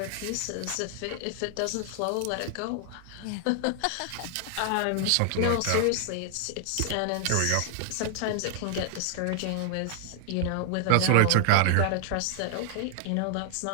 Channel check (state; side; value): different; both; correlation 0.00